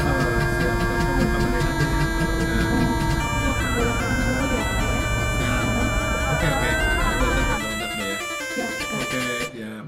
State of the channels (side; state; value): both; identical; correlation 1.00